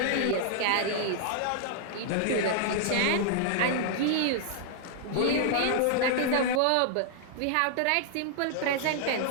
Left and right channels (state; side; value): different; both; correlation -0.01